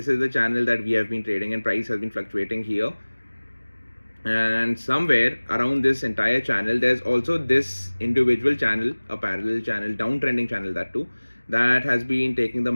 is the channel that we have been trading, and price has been fluctuating here. And somewhere around this entire channel, there's also this individual channel, a parallel channel, downtrending channel, that too, that has been taking the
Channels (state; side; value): inverted; both; correlation -1.00